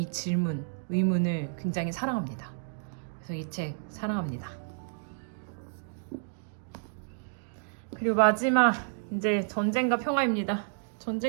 질문, 의문을 굉장히 사랑합니다. 그래서 이 책 사랑합니다. 그리고 마지막, 이제 전쟁과 평화입니다.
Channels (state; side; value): silent; left; digital silence